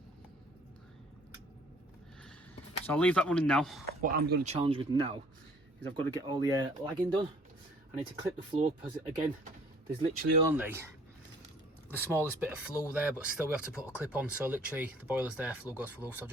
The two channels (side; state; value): both; normal; correlation 0.56